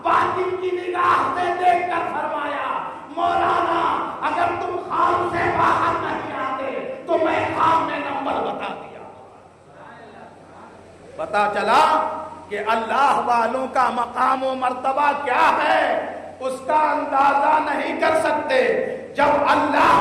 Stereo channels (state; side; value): identical; both; correlation 1.00